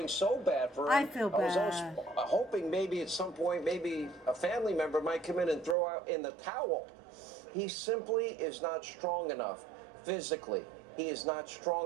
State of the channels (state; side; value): drops out; left; at 5.8 s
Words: so bad for him. I feel bad. I was hoping maybe at some point, maybe a family member might come in and throw out in the towel. He simply is not strong enough physically. He is not